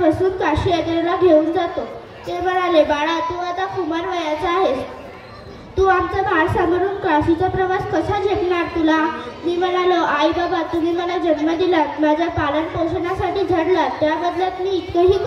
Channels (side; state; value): both; identical; correlation 1.00